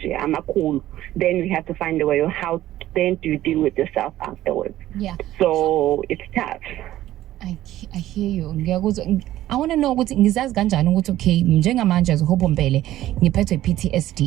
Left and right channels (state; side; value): quieter; left; 14.1 dB